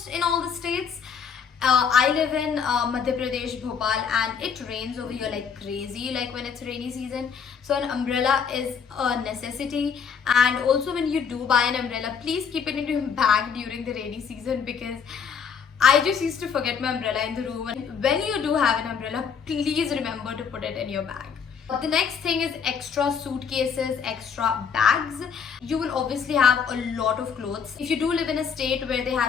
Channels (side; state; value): right; quieter; 6.7 dB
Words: in all the states. I live in Madhya Pradesh, Bhopal, and it rains over here like crazy, like when it's rainy season. So an umbrella is a necessity. And also, when you do buy an umbrella, please keep it in your bag during the rainy season, because I just used to forget my umbrella in the room. And when you do have an umbrella, please remember to put it in your bag. The next thing is extra suitcases, extra bags. You will obviously have a lot of clothes. If you do live in a state where they